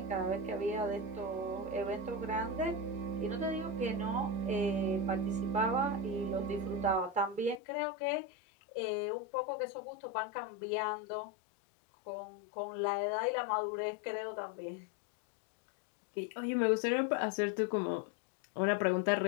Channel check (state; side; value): drops out; right; at 7.6 s